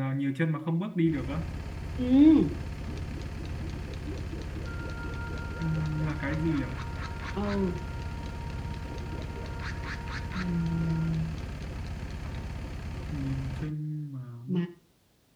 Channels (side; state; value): both; identical; correlation 1.00